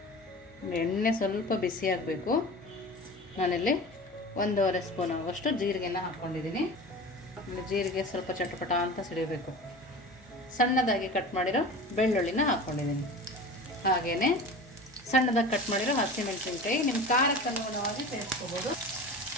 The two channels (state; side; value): noise; left; hum, 28 dB below the sound